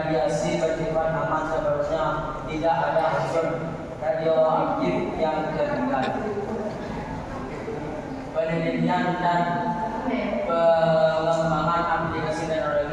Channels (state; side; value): identical; both; correlation 1.00